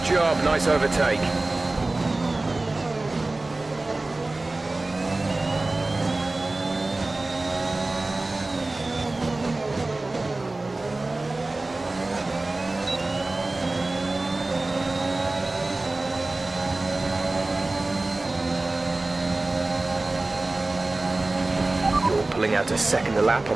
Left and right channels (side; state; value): left; quieter; 3.0 dB